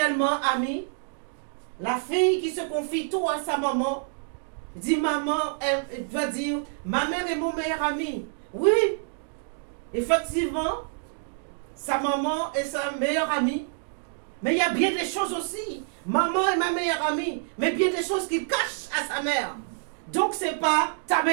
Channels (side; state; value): left; silent; digital silence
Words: amie. La fille qui se confie tout à sa maman, dit maman, elle doit dire, ma mère est mon meilleur ami. Oui, effectivement, sa maman est sa meilleure amie. Mais il y a bien des choses aussi. Maman est ma meilleure amie, mais bien des choses qu'il cache à sa mère. Donc c'est pas ta